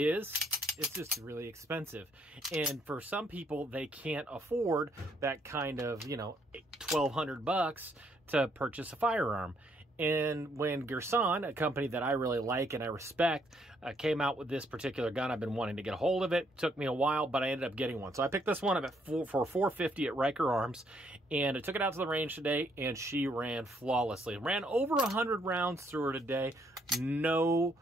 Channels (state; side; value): normal; both; correlation 0.71